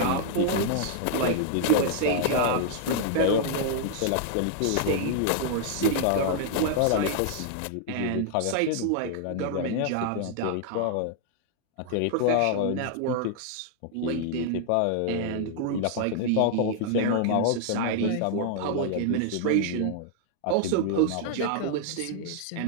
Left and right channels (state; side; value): different; both; correlation -0.01